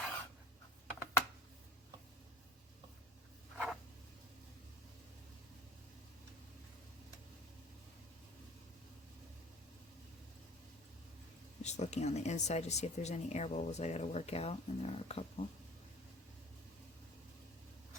Just looking on the inside to see if there's any air bubbles I gotta work out, and there are a couple.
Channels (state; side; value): normal; both; correlation 0.46